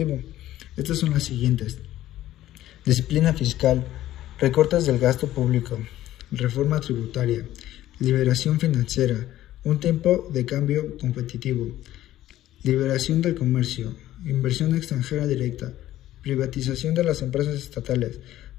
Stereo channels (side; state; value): right; quieter; 13.9 dB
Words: Estas son las siguientes: disciplina fiscal, recortes del gasto público, reforma tributaria, liberación financiera, un tiempo de cambio competitivo, liberación del comercio, inversión extranjera directa, privatización de las empresas estatales,